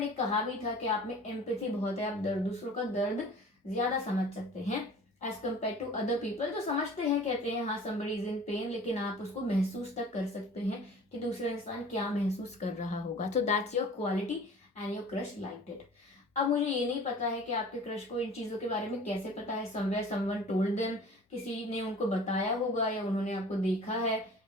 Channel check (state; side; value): normal; both; correlation 0.44